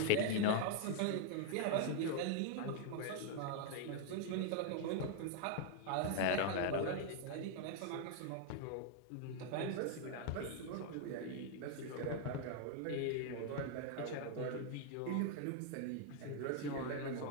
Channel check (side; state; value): both; different; correlation 0.00